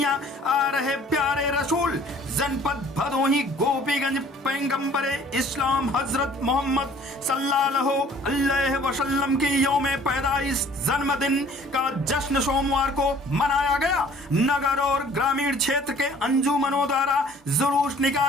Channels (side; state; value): both; normal; correlation 0.53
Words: आ रहे प्यारे रसूल। जनपद भदोही गोपीगंज पैगंबरे इस्लाम हजरत मोहम्मद सल्लल्लाहु अलैहि वसल्लम की यौमे पैदाइश जन्मदिन का जश्न सोमवार को मनाया गया। नगर और ग्रामीण क्षेत्र के अंजुमनों द्वारा जुलूस